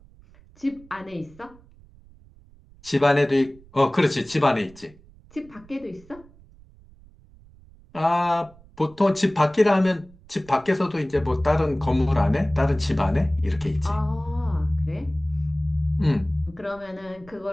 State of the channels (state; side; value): noise; right; rumble, 25 dB below the sound